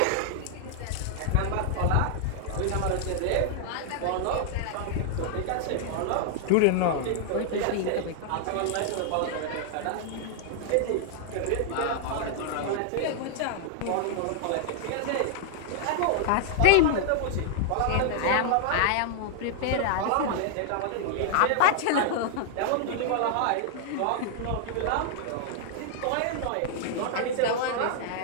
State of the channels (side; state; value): both; different; correlation -0.01